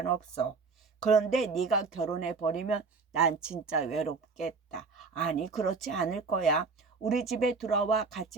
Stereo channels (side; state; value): left; quieter; 4.6 dB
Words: 그런데 네가 결혼해버리면 난 진짜 외롭겠다. 아니, 그렇지 않을 거야. 우리 집에 들어와